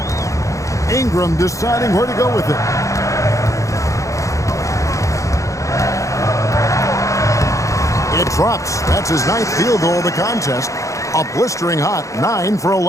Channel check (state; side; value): late; right; 0.15 ms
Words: Ingram deciding where to go with it. It drops. That's his 9th field goal of the contest. A blistering hot 9 for